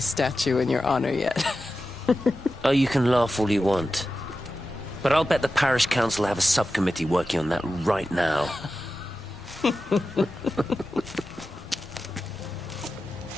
statue in your honor yet. Oh, you can laugh all you want. But I'll bet the parish council have a subcommittee working on that right now.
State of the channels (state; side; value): normal; both; correlation 0.92